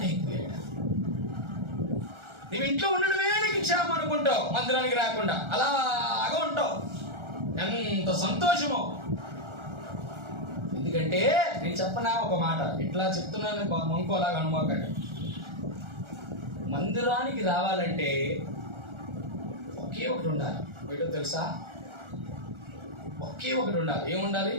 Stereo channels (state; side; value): late; left; 1.4 ms